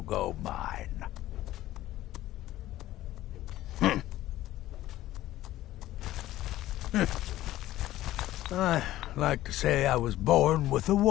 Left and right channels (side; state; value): right; quieter; 14.8 dB